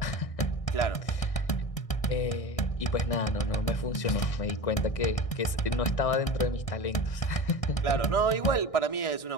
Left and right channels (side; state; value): right; late; 1.6 ms